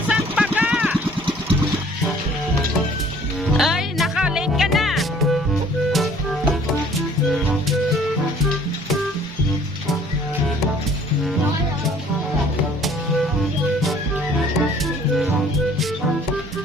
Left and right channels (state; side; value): normal; both; correlation 0.55